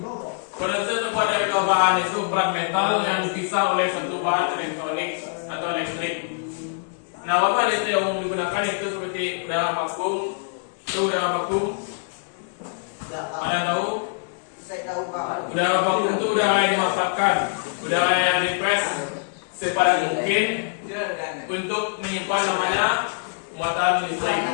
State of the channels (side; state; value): right; silent; digital silence